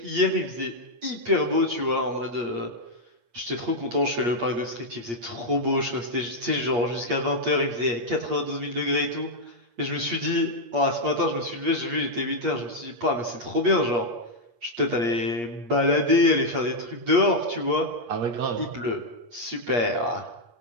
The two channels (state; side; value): late; left; 8.5 ms